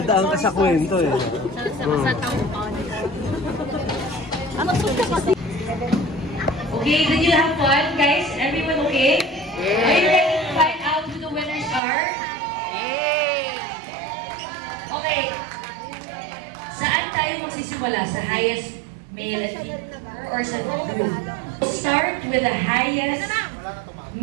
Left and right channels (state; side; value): drops out; left; at 11.8 s